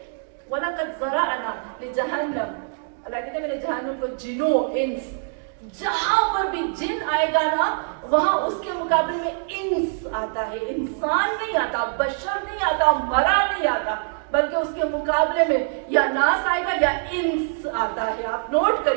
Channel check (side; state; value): left; silent; digital silence